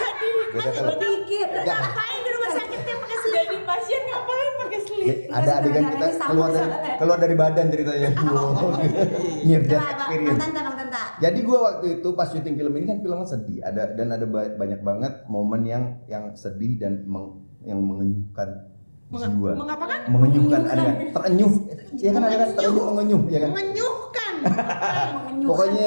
di Beda film. Dikit. Nggak. ngapain di rumah sakit dia pakai selimut? Jadi pasien ngapain pakai selimut? Ada adegan kita keluar dari badan ceritanya. Near death experience. Bang Tanta. Jadi gua waktu itu pas syuting film ini kan filmnya sedih, ada banyak banget momen yang sedih dan yang mengenyuhkan jiwa. Mengapakan? Mengenyuhkan ada kan? Terenyuh. Ya kan ada kan terenyuh mengenyuh ya kan? Mengenyuhkan. Pokoknya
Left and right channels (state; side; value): inverted; both; correlation -1.00